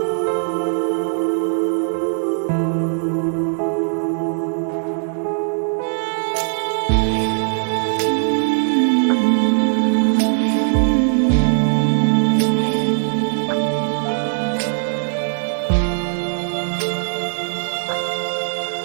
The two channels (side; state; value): left; silent; 61 dB below the other